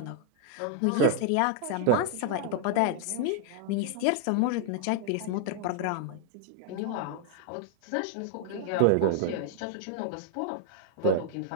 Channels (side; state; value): both; different; correlation -0.01